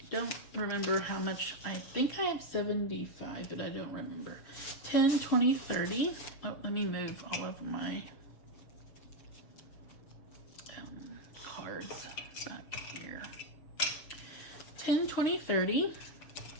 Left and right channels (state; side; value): late; right; 6.7 ms